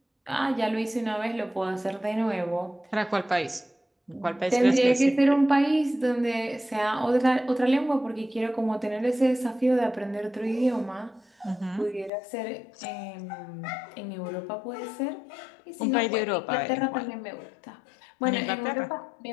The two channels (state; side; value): drops out; right; at 12.1 s